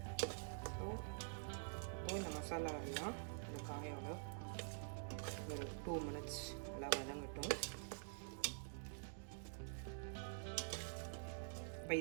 ஸோ இப்போ இந்த மசாலா எல்லாம் இந்த காயோட ஒரு 2 மினிட்ஸ் நல்லா வதங்கட்டும்.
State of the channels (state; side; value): silent; left; digital silence